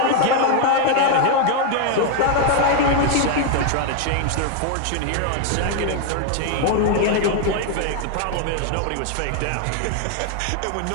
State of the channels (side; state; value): both; different; correlation 0.01